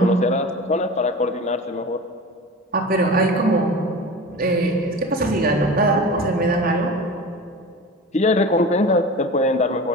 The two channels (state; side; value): normal; both; correlation 0.33